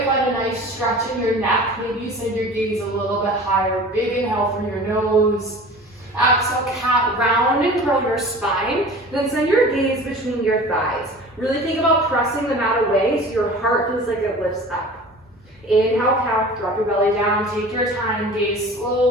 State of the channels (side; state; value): both; normal; correlation 0.40